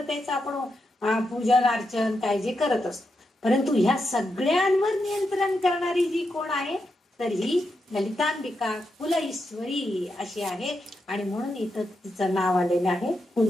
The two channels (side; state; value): both; normal; correlation 0.85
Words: आपण पूजन अर्चन काय जे करत असतो, परंतु ह्या सगळ्यांवर नियंत्रण करणारी जी कोण आहे तर ही ललितांबिका कुल ईश्वरी अशी आहे. आणि म्हणून इथं तिचं नाव आलेलं आहे